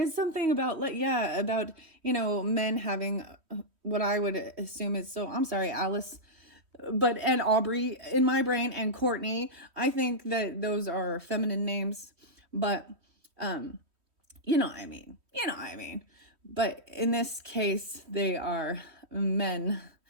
something about, men having what I would assume is, so I'm sorry, Alice, and Aubrey in my brain, and Courtney. I think that those are feminine names, but you know what I mean. But in this case, they are men.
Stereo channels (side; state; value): left; late; 3.1 ms